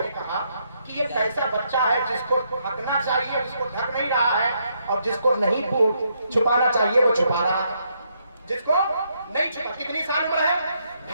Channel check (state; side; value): inverted; both; correlation -0.75